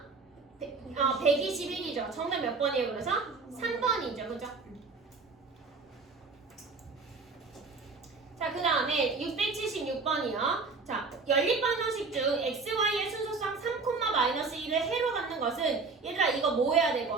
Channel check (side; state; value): left; quieter; 4.2 dB